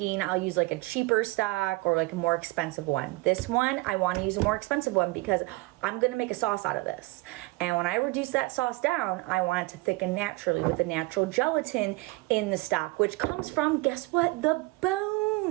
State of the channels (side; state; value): left; quieter; 22.8 dB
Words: I'll use like a cheaper stock or like a more expensive one. This one, I want to use a more expensive one because I'm going to make a sauce out of this. And when I reduce that sauce down, I want it to thicken naturally with the natural gelatin in the stock, which comes from, guess what? The